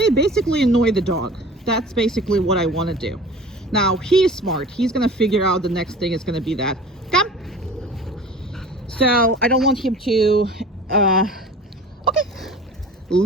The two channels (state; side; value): normal; both; correlation 0.41